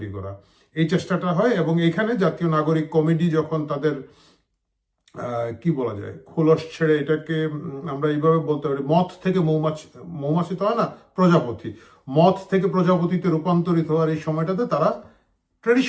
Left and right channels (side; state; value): both; identical; correlation 1.00